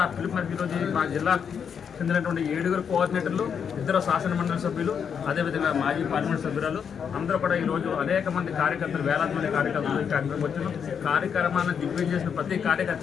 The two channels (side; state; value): right; quieter; 7.2 dB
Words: ఆ పిలుపు మేరకు ఈరోజు మా జిల్లా చెందినటువంటి 7 కోఆర్డినేటర్లు, 2 శాసన మండలి సభ్యులు, అదేవిధంగా మాజీ పార్లమెంట్ సభ్యురాలు అందరూ కూడా ఈరోజు అనేక మంది కార్యకర్తలు, వేలాది మంది కార్యకర్తలు ఈ కార్యక్రమం వచ్చిన కార్యక్రమాన్ని దిగ్విజయం చేసిన ప్రతి